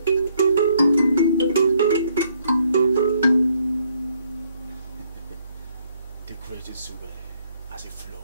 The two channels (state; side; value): inverted; both; correlation -0.70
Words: The great Nsugbe as it